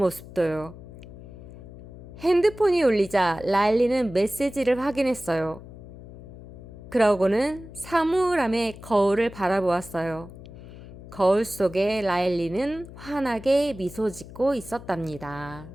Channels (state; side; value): noise; left; hum, 16 dB below the sound